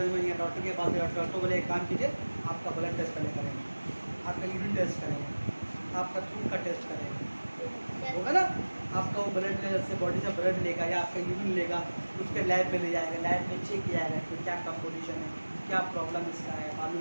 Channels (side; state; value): both; inverted; correlation -1.00